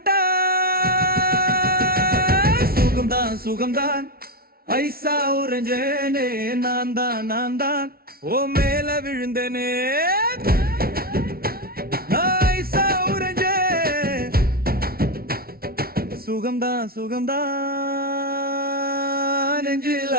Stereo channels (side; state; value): left; late; 0.44 ms